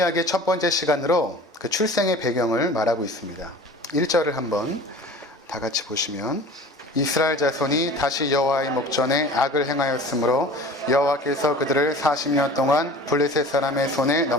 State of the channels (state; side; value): normal; both; correlation 0.41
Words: 첫 번째 시간으로 그 출생의 배경을 말하고 있습니다. 1절을 한번 다 같이 보시면, 이스라엘 자손이 다시 여호와의 목전에 악을 행하였으므로 여호와께서 그들을 40년 동안 블레셋 사람의 손에